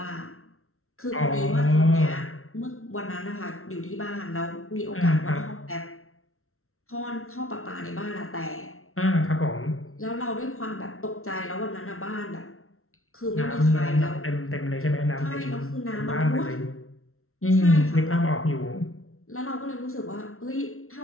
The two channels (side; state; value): right; late; 0.62 ms